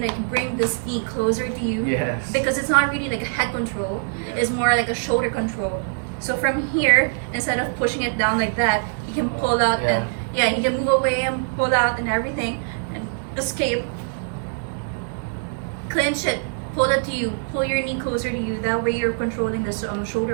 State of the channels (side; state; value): left; silent; digital silence